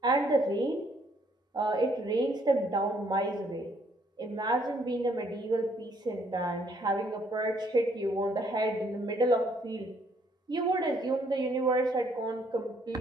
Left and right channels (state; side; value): normal; both; correlation 0.67